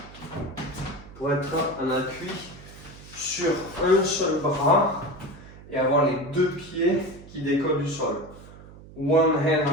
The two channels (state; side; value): noise; right; hum, 19 dB below the sound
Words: Pour être en appui sur un seul bras et avoir les deux pieds qui décollent du sol. One hand